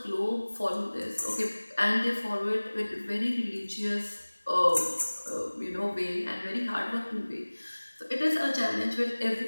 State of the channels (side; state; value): both; inverted; correlation -1.00